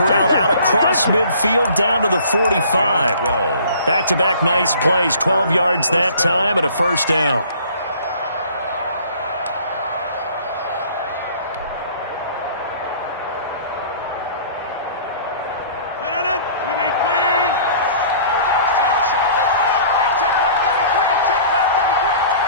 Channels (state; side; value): inverted; both; correlation -0.50